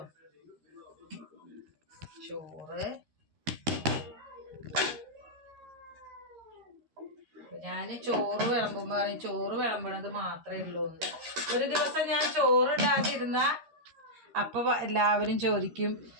ചോറ്, ഞാൻ ചോറ് വിളമ്പുമ്പോൾ പറയും ചോറ് വിളമ്പണത് മാത്രമേ ഉള്ളൂ. ഒരു ദിവസം ഞാൻ ചോറ് ഇടാതിരുന്ന അപ്പൊ എല്ലാവരും ചോദിക്കും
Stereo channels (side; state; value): left; late; 13 ms